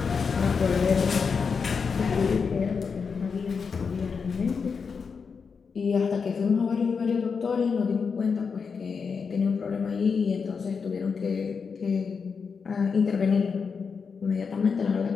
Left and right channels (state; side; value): quieter; right; 5.6 dB